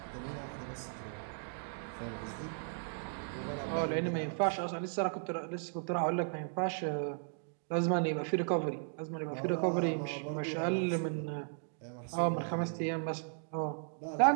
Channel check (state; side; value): silent; left; digital silence